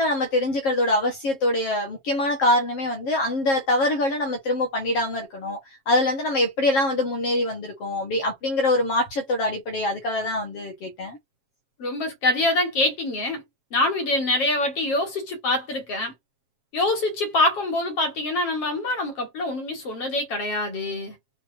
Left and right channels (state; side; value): late; right; 7.4 ms